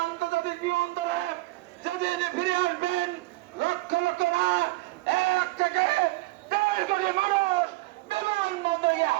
আন্তর্জাতিক বিমানবন্দরে যেদিন ফিরে আসবেন লক্ষ লক্ষ না 1 থেকে 1.5 কোটি মানুষ বিমানবন্দরে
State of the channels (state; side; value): quieter; left; 20.9 dB